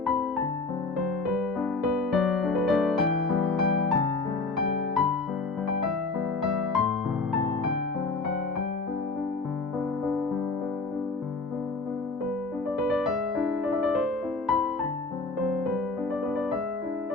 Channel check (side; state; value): right; quieter; 3.7 dB